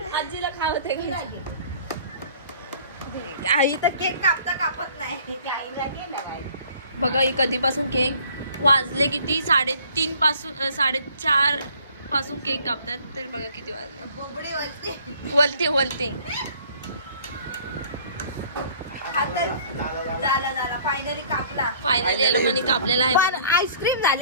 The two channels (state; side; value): inverted; both; correlation -0.55